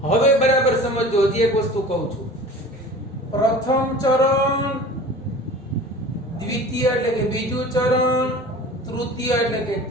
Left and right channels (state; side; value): normal; both; correlation 0.40